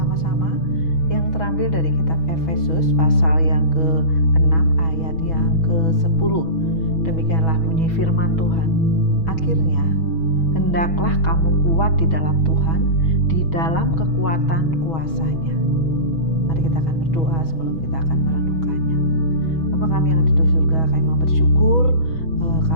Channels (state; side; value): late; right; 6.2 ms